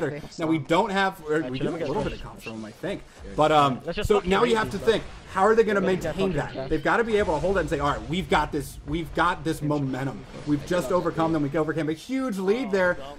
Now we don't have, we do have a little bit of comps from him, I think. But so now you have to think, how are they going to maintain that? They've got to be able to hold it and say, all right, we've got this momentum. We've just overcome them. We overcame a huge lead there,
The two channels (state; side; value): identical; both; correlation 1.00